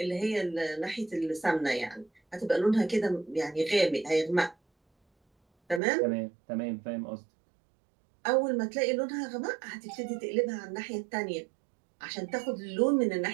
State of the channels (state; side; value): drops out; left; at 5.8 s